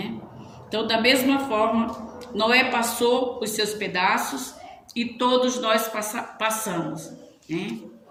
Então, da mesma forma, Noé passou os seus pedaços e todos nós passamos, né?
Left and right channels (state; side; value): identical; both; correlation 1.00